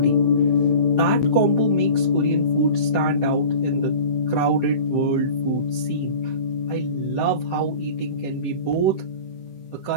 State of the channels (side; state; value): right; late; 15 ms